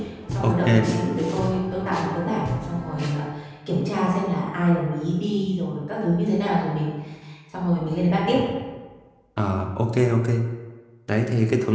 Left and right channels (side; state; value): both; identical; correlation 1.00